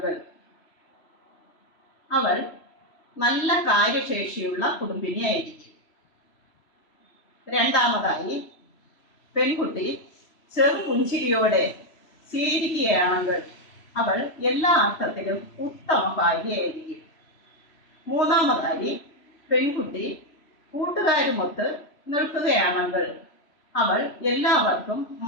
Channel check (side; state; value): right; late; 3.0 ms